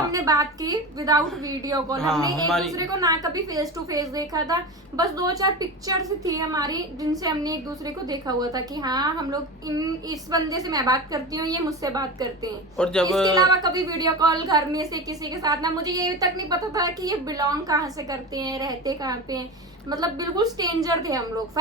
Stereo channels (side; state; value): both; normal; correlation 0.26